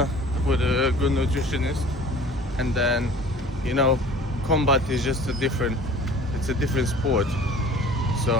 good nutritionist, and then you know, combat is just it's a different sport.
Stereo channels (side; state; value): both; normal; correlation 0.46